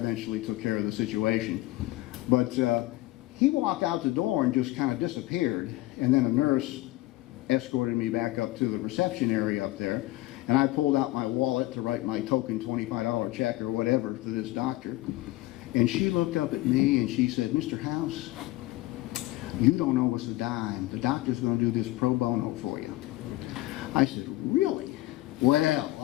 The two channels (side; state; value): right; quieter; 18.0 dB